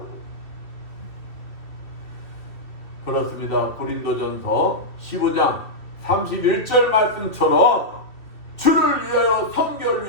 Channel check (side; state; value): right; late; 2.5 ms